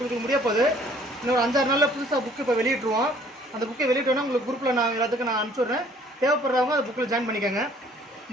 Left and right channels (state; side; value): normal; both; correlation 0.57